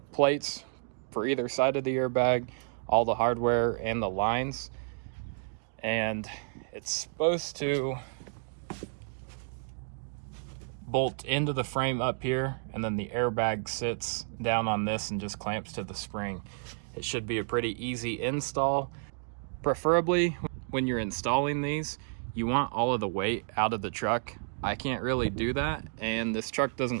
plates for either side of the airbag, all the hardware and the lines. And it's supposed to bolt into the frame up here, and then the airbag sits down on this and just clamps to the spring. It should be a pretty easy install. Preferably when you're installing these, you want all of the weight out of the truck. I can't really do that, and this truck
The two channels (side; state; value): left; silent; digital silence